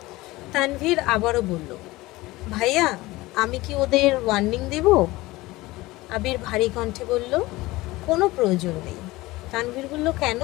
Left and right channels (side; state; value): right; quieter; 19.7 dB